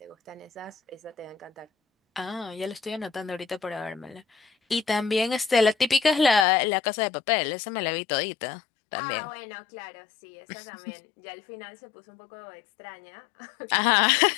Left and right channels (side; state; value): right; drops out; at 6.5 s